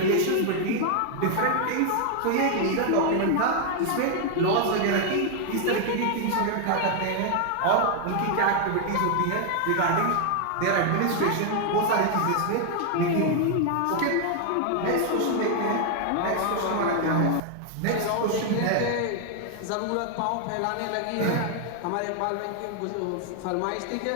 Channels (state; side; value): different; both; correlation 0.00